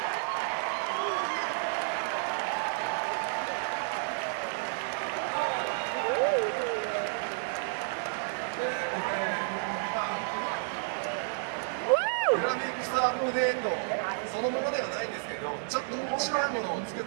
Woo! グラフィックスアップデートそのものではないんですけど、ちょっと面白いものを作っ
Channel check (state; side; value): silent; left; digital silence